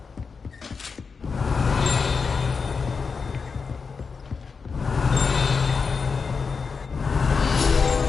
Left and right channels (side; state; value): right; quieter; 5.2 dB